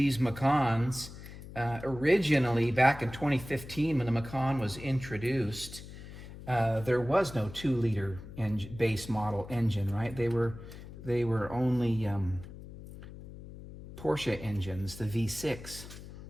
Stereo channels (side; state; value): left; noise; hum, 14 dB below the sound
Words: Macans, originally back in 2015 when the Macan was introduced, there was no 2-liter base model engine, right? They were only Porsche engines, the V6.